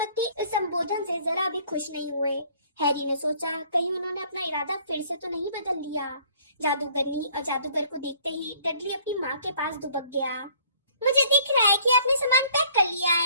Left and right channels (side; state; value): both; inverted; correlation -0.57